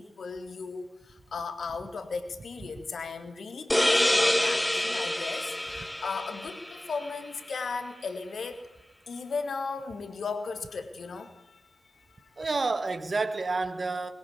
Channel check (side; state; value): both; normal; correlation 0.95